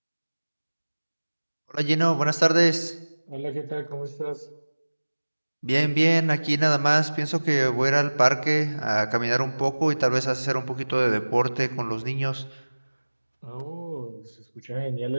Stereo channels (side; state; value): both; inverted; correlation -1.00